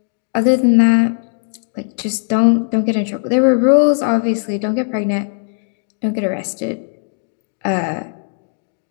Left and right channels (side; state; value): right; silent; digital silence